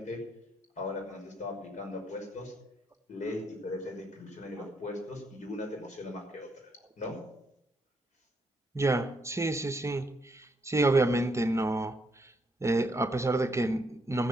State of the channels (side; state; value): both; normal; correlation 0.75